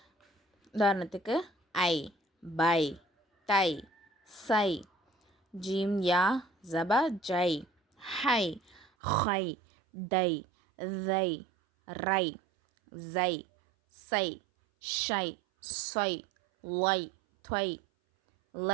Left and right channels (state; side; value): drops out; left; at 8.8 s